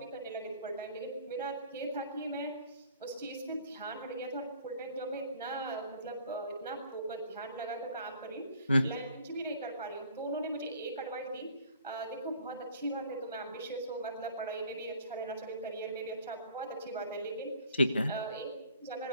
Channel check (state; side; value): inverted; both; correlation -0.54